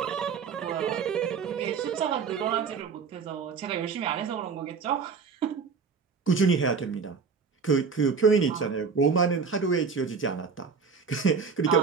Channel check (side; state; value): left; quieter; 5.6 dB